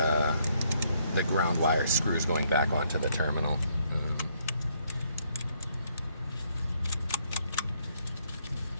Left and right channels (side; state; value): both; inverted; correlation -0.70